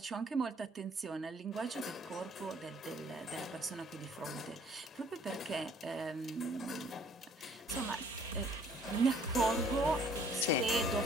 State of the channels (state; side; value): normal; both; correlation 0.59